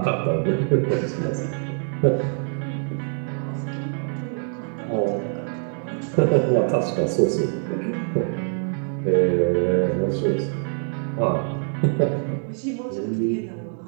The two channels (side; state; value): left; silent; 55 dB below the other